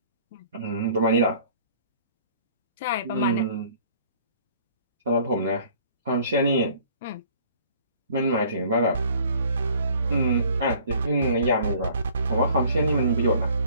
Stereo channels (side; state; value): both; inverted; correlation -0.54